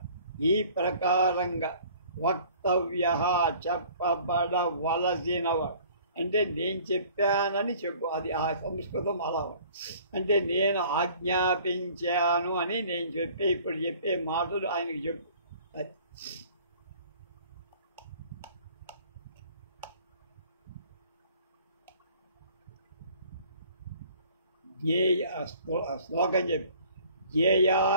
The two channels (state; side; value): inverted; both; correlation -0.52